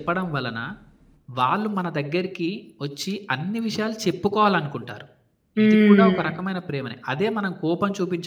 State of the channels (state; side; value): identical; both; correlation 1.00